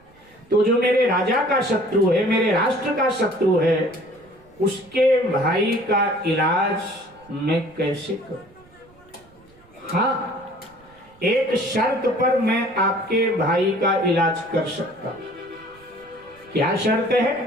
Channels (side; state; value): right; noise; rumble, 29 dB below the sound